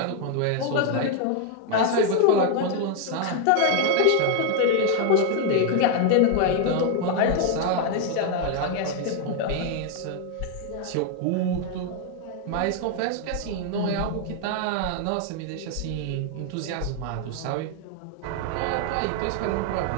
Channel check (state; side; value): different; both; correlation 0.01